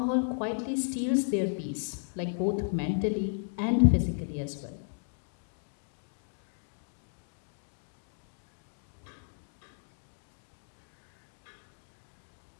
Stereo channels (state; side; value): silent; right; digital silence